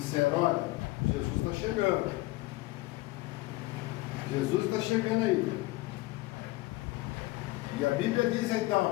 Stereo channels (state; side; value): quieter; right; 20.2 dB